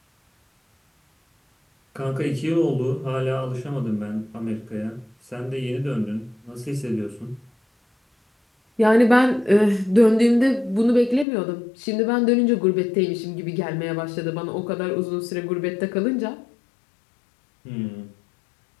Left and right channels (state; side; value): drops out; right; at 11.2 s